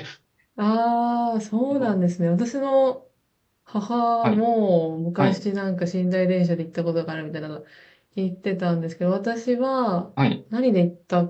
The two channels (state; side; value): identical; both; correlation 1.00